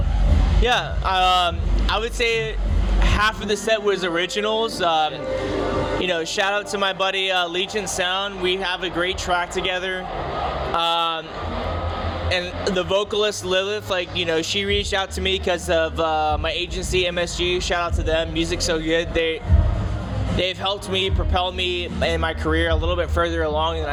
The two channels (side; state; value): both; identical; correlation 1.00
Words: Yeah, I would say half of the set was originals. You know, shout out to my buddy Legion Sound. We have a great track together. And the vocalist Lilith, like, you know, she reached out to me because of my agency MSG. Shout out to them. Music's so good. They've helped me propel me in my career a little bit further along than